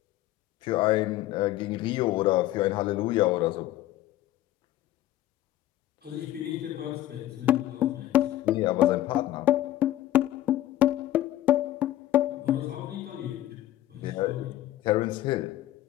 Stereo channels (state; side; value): quieter; right; 14.2 dB